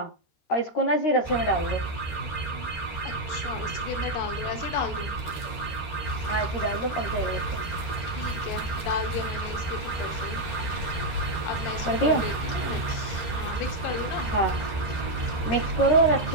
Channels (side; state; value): right; late; 13 ms